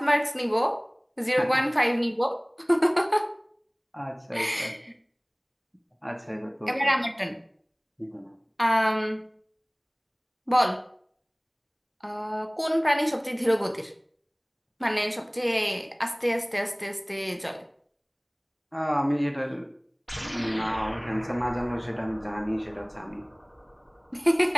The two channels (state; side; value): identical; both; correlation 1.00